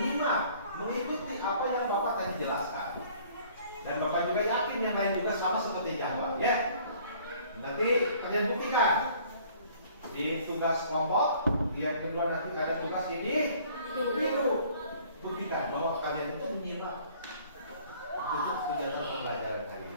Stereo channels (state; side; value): inverted; both; correlation -0.55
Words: mengikuti apa yang Bapak tadi jelaskan. Dan Bapak juga yakin yang lain juga sama seperti Jawa, ya. Nanti kalian buktikan di tugas kelompok. Yang kedua nanti ada tugas ini biru. Buktikan bahwa kalian itu menyimak untuk kegiatan pembelajaran kali